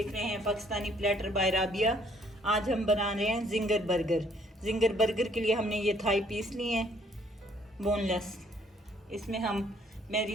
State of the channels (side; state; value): both; normal; correlation 0.64